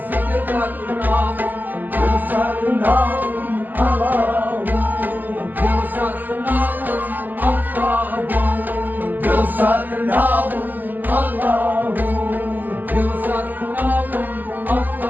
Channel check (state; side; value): late; left; 0.086 ms